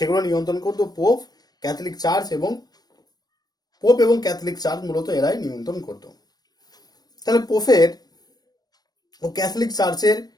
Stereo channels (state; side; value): late; right; 0.19 ms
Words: নিয়ন্ত্রণ করত পোপ, ক্যাথলিক চার্চ এবং ক্যাথলিক চার্চ মূলত এরাই নিয়ন্ত্রণ করত। তাহলে পোপের ও ক্যাথলিক চার্চের